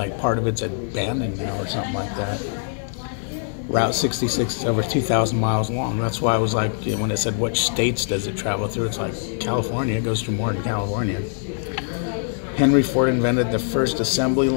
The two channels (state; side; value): silent; right; digital silence